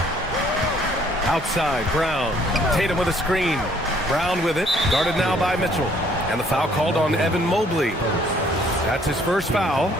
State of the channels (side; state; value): both; normal; correlation 0.62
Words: Outside, Brown. Tatum with a screen. Brown with it. Guarded now by Mitchell. And the foul called on Evan Mobley. That's his first foul.